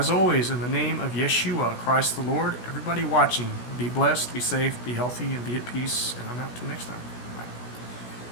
always, in the name of Yeshua, Christ the Lord, everybody watching, be blessed, be safe, be healthy, and be at peace. And I'm out till next time.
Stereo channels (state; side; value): late; right; 16 ms